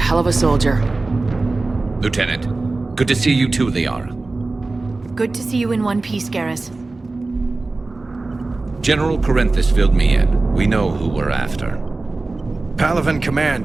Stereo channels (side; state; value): left; quieter; 3.4 dB